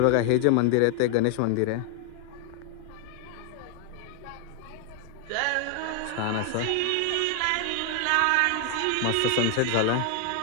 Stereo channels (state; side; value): different; both; correlation 0.00